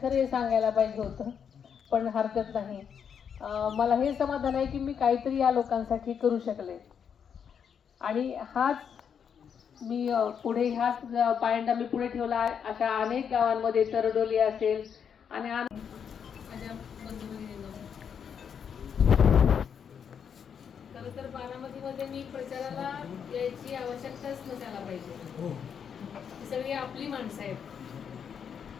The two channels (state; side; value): quieter; right; 7.4 dB